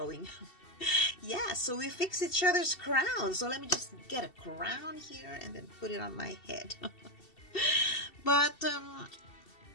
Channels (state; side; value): late; right; 2.7 ms